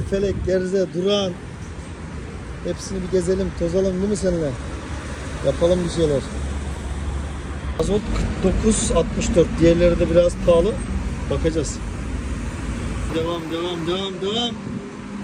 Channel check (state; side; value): identical; both; correlation 1.00